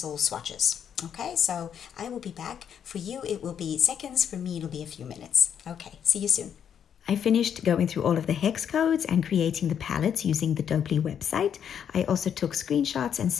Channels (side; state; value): right; quieter; 8.5 dB